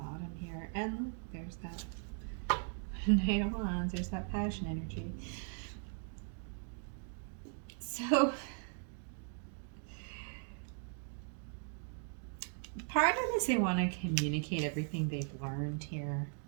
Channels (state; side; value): silent; left; 52 dB below the other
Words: bottom here, and there's that Knight of Wands. There's that passion energy. So part of this, they want to communicate everything they've learned here